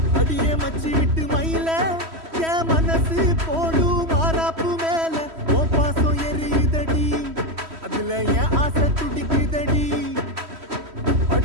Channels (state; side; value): late; left; 3.1 ms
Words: அடியே மச்சி விட்டு மயில என் மனசு போடு மாறாப்பு மேல ஓ பாசம் எரியுதடி அதுல என் ஆசை துடிக்குதடி